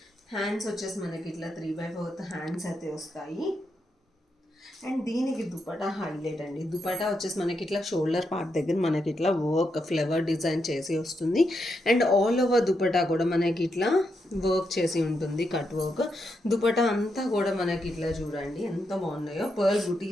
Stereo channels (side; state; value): both; normal; correlation 0.83